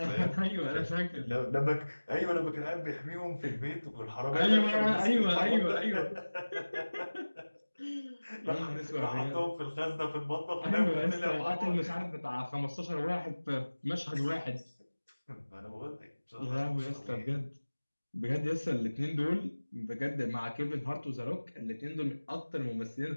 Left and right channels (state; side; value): inverted; both; correlation -1.00